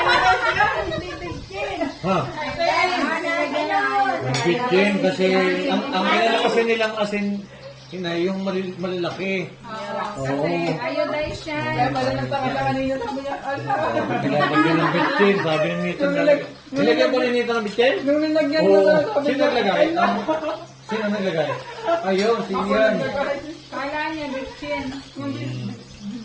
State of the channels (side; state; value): both; identical; correlation 1.00